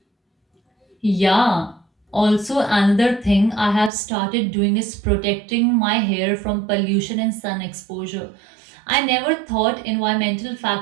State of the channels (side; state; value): left; drops out; at 3.9 s